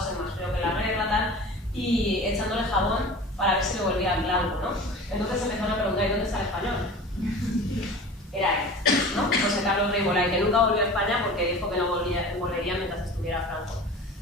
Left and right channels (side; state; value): both; normal; correlation 0.38